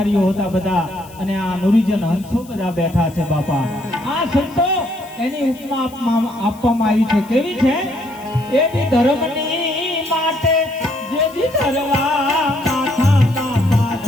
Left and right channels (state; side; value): noise; left; hiss, 23 dB below the sound